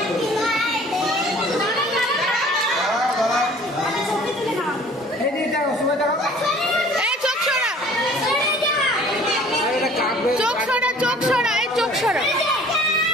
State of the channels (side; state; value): both; normal; correlation 0.51